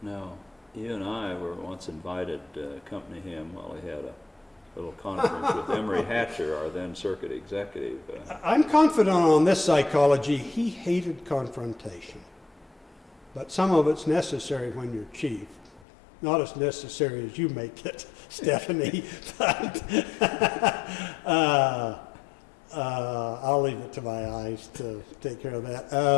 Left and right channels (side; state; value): right; drops out; at 15.9 s